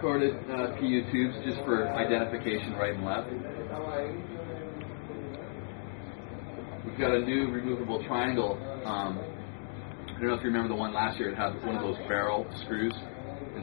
PU tubes just for identification right and left. We've got a new removable triangle. I don't know if you remember the one last year. It had one of those barrel screws,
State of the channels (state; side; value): silent; right; digital silence